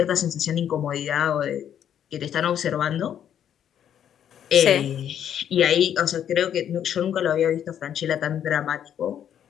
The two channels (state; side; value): quieter; right; 9.6 dB